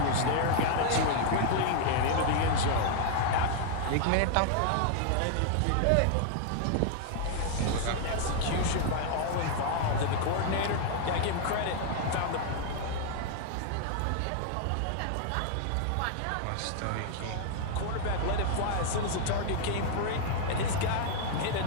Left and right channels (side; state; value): both; different; correlation 0.00